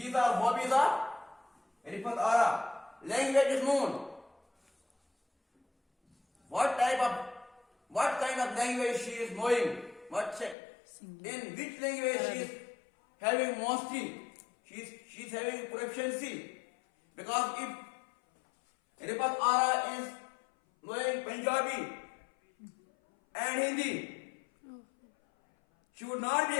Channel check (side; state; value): right; drops out; at 10.6 s